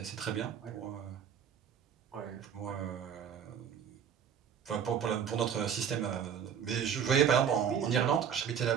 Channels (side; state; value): left; quieter; 8.1 dB